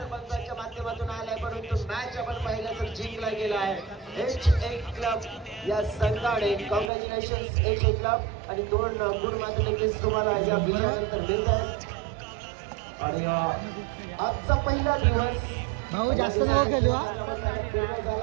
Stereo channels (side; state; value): left; drops out; at 6.9 s